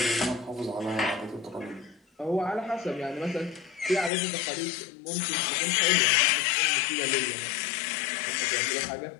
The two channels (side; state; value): right; drops out; at 4.1 s